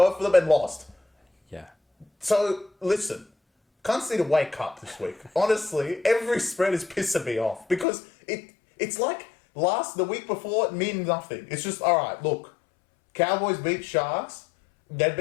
of them and lost. Yeah. So, listen. Cunts need to wake up this week. Honestly, every spread is pissing me off. Because it's like the week before, it means nothing. It's just, alright, look. Cowboys beat Sharks. They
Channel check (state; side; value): drops out; right; at 7.9 s